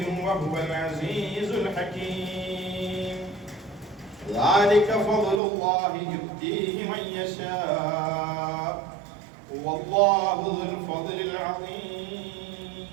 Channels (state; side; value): drops out; left; at 5.4 s